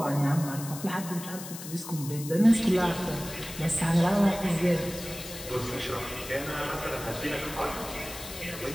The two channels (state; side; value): noise; left; hiss, 11 dB below the sound